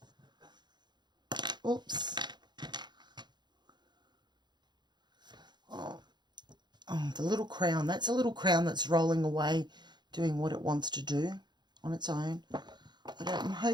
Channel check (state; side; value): late; left; 0.21 ms